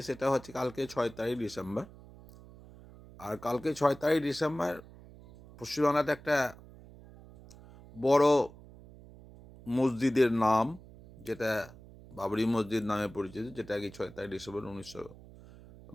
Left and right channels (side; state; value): right; noise; hum, 20 dB below the sound